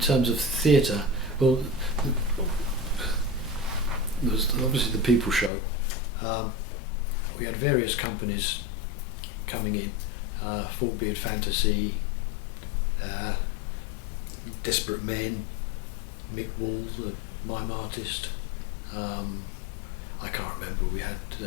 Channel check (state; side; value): drops out; right; at 5.5 s